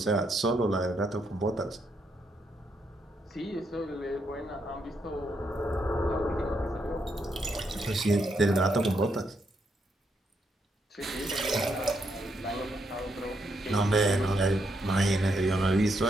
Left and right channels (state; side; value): normal; both; correlation 0.78